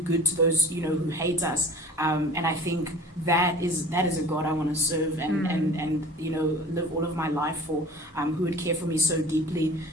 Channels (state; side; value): normal; both; correlation 0.41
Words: to those, you know, who hate us. And I think that is a God I want to serve and you know, live all of my life for, who would care for me so deeply.